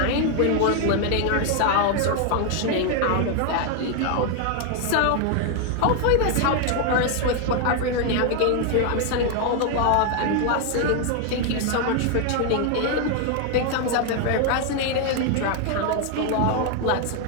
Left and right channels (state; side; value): different; both; correlation 0.01